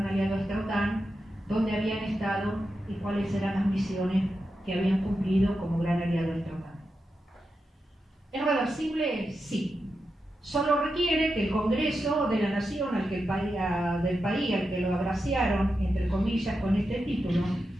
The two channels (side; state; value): both; normal; correlation 0.88